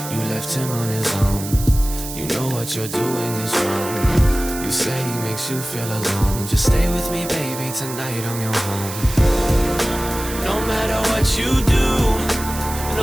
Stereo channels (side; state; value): right; noise; hiss, 10 dB below the sound